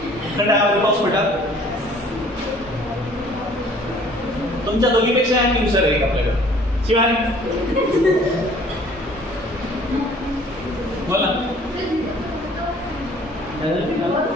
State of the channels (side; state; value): both; normal; correlation 0.54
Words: हवेमध्ये पाऊस पडला तुमच्या दोघीपेक्षा ऍक्टिव्ह सर आहे आपल्याकडे शिवाय बोला